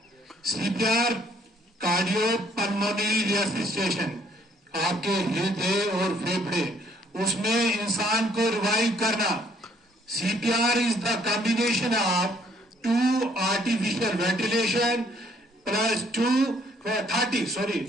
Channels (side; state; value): both; normal; correlation 0.65